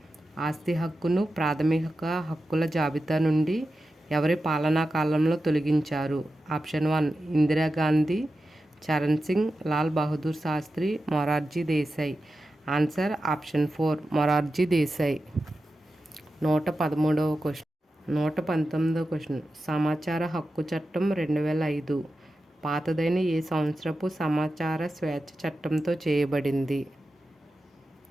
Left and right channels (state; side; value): normal; both; correlation 0.92